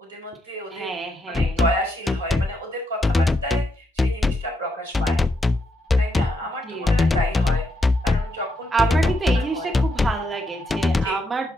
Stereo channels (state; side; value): normal; both; correlation 0.79